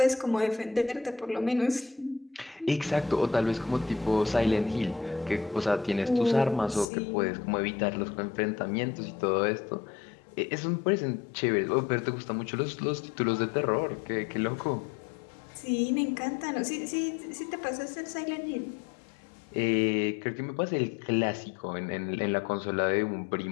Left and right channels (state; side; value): drops out; right; at 6.9 s